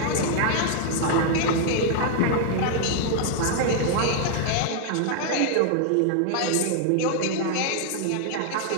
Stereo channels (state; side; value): different; both; correlation 0.00